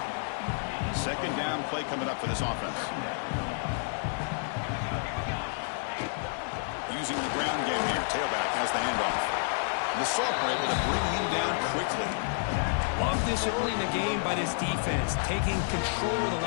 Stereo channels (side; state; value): right; silent; digital silence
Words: Second down play coming up for this offense. Using the ground game here. Tailback has the handoff. And the Sophomore able to bring him down quickly. Love this early in the game by this defense, taking control of the